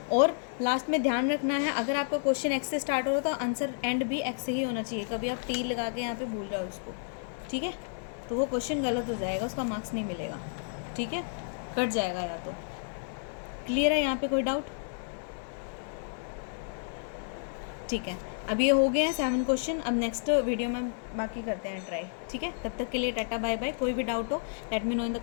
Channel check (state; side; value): silent; right; digital silence